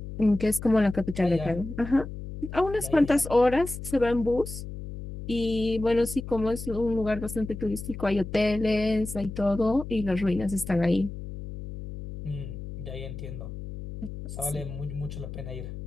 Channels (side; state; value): left; noise; hum, 9 dB below the sound